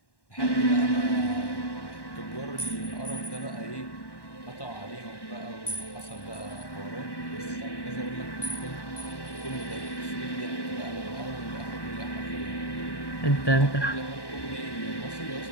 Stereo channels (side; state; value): right; late; 1.1 ms